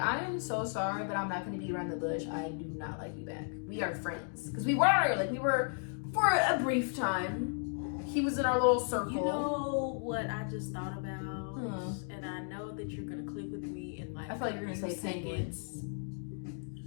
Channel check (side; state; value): right; silent; 55 dB below the other